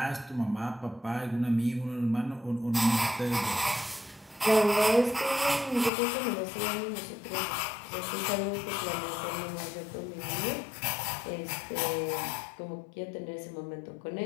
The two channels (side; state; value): right; drops out; at 5.9 s